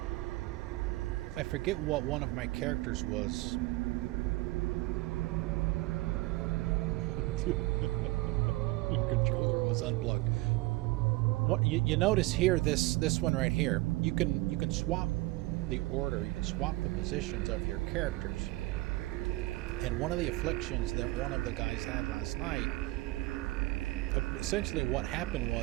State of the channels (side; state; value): left; quieter; 20.4 dB